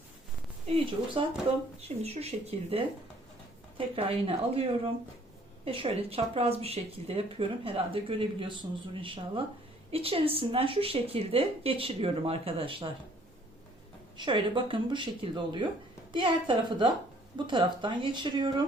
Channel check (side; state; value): both; normal; correlation 0.60